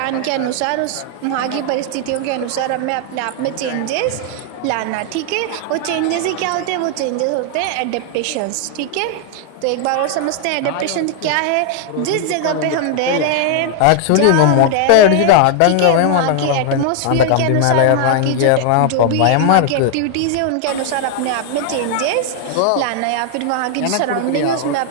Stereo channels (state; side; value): different; both; correlation 0.00